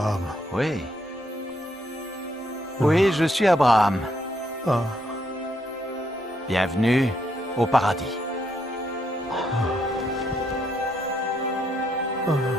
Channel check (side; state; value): both; normal; correlation 0.75